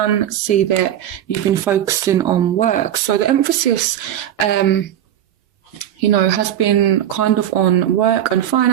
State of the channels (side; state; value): left; quieter; 11.2 dB